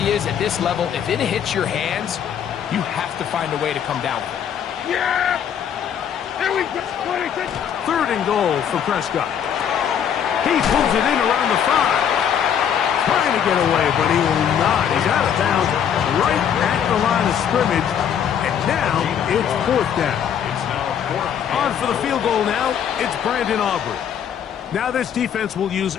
is at this level, if it hits your hands, you have to find a way to come down with it. Yeah! Here we go! 26! 3rd and goal for Prescott. He pulls it in around the 5. Trying to get away, but he will not. He's out of bounds right at the line of scrimmage. And now it's 4th down. On for the field goal now, it's Brandon Aubrey. Now this defense will use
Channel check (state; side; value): quieter; right; 8.6 dB